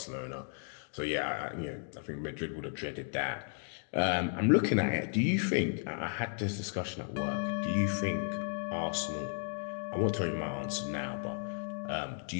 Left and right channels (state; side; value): silent; right; 55 dB below the other